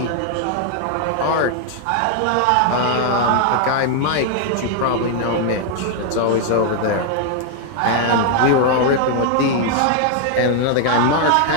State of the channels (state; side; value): different; both; correlation 0.00